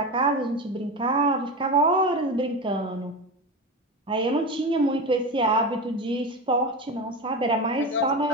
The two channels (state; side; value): normal; both; correlation 0.22